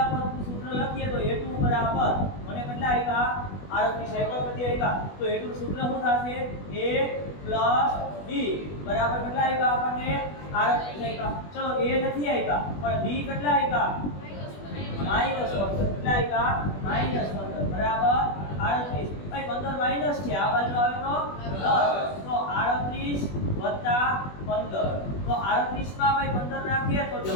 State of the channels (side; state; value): right; late; 20 ms